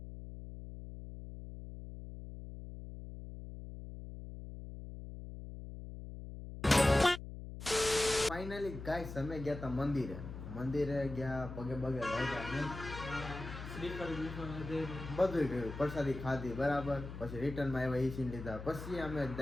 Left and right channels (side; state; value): left; noise; hum, 10 dB below the sound